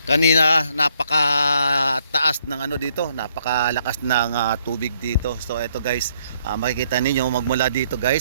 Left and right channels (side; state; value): both; inverted; correlation -0.69